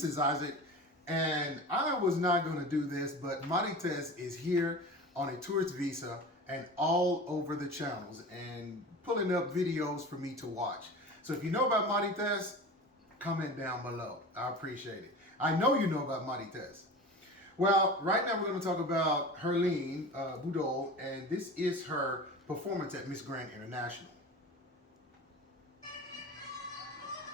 is Isaac, and I was not going to do this, but Marites is here on a tourist visa and all over the channels and pulling up videos for me to watch. So if you know about Marites, comment down below. I appreciate it. I know you know about Marites. Well, right now we're going to talk about Herlene Budol, and this is her performance at Miss Grand International.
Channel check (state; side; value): normal; both; correlation 0.34